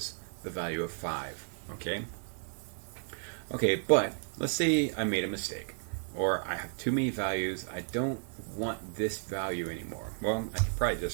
the value of 5. Okay, but let's say I made a mistake, or I have too many values. I don't want this value anymore. Well, I could probably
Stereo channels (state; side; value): silent; left; digital silence